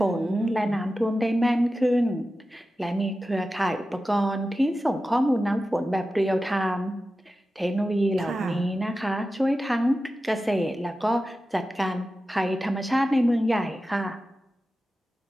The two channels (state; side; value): normal; both; correlation 0.93